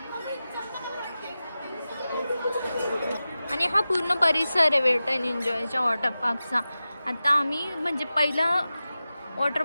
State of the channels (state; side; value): inverted; both; correlation -0.94